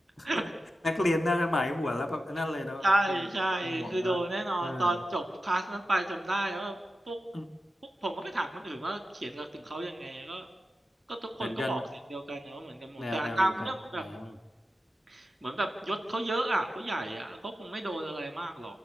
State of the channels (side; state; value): both; normal; correlation 0.92